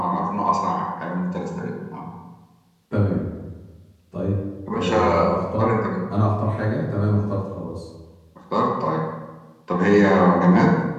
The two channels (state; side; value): identical; both; correlation 1.00